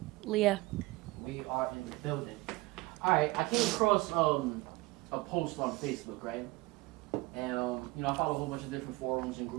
Leah. We are in the building. Alright, I came across a post on Facebook, right? And I follow a whole bunch of different forums and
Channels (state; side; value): quieter; left; 21.8 dB